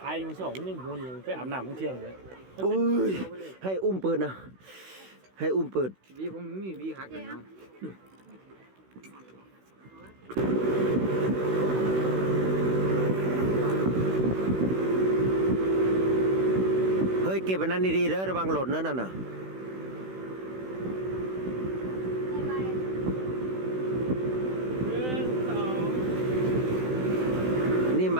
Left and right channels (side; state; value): left; late; 16 ms